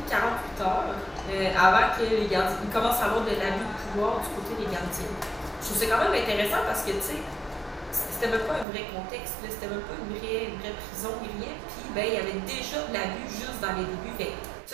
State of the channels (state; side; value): drops out; left; at 8.7 s